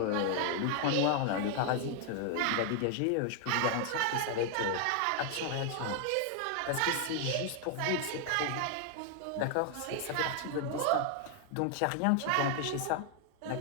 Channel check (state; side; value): different; both; correlation 0.00